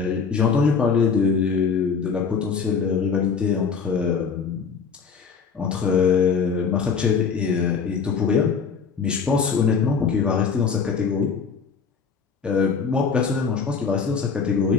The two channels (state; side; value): quieter; right; 5.8 dB